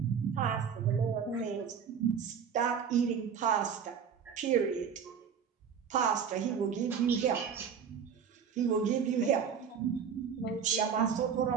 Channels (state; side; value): quieter; left; 7.1 dB